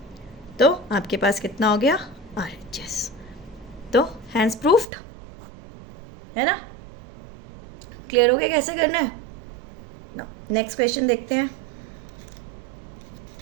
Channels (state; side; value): drops out; left; at 4.9 s